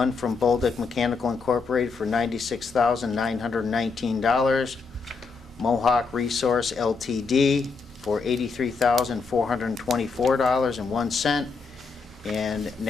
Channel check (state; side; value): quieter; right; 4.7 dB